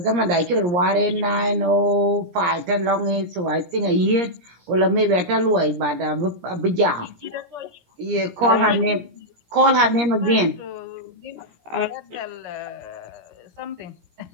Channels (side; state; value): left; late; 17 ms